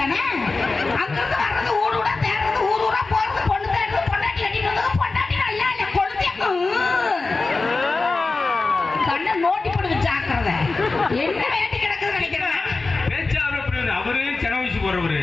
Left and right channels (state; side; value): quieter; right; 3.7 dB